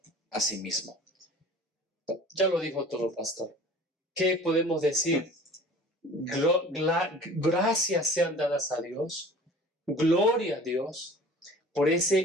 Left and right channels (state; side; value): normal; both; correlation 0.44